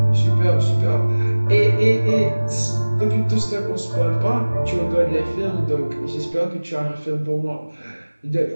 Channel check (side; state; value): both; inverted; correlation -1.00